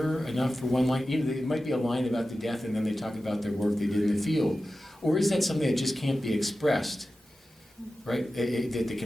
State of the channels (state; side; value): normal; both; correlation 0.94